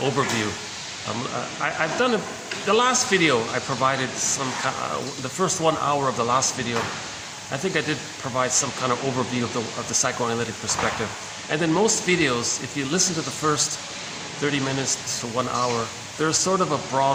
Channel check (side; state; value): both; identical; correlation 1.00